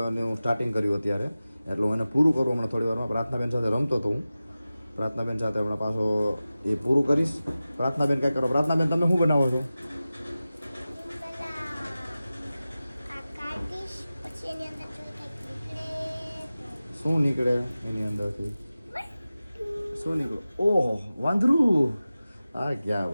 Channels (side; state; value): both; inverted; correlation -0.96